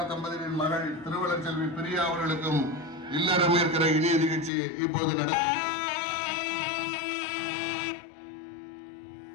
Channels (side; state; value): right; drops out; at 4.5 s